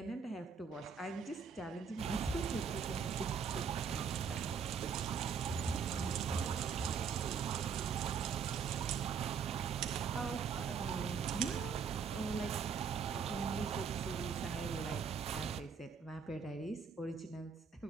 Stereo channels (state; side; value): quieter; left; 6.4 dB